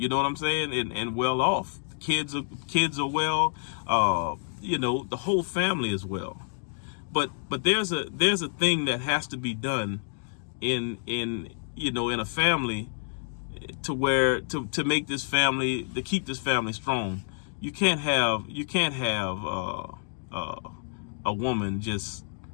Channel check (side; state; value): right; silent; digital silence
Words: know what I'm saying? And well off. Kids are well. The whole family is well. But there's a thing that has to be done in a family to make this family, to keep this family strong. You can't have a woman just